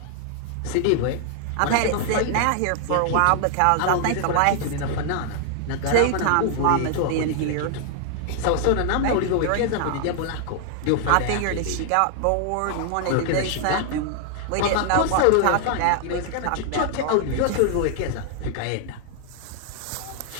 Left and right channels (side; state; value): both; different; correlation 0.00